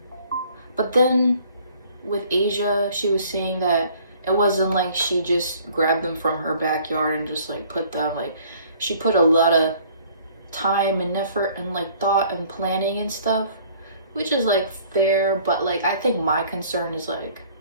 but then with Asia, she was saying that it wasn't like she just grabbed them from her backyard and just like put them, like she put a lot of time and effort and like thought and planning and stuff, which is like fair, but like I think my concern is like,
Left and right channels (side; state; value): both; inverted; correlation -0.56